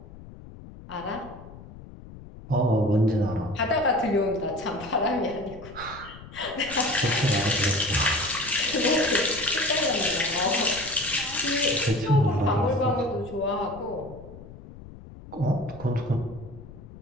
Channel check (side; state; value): left; noise; rumble, 17 dB below the sound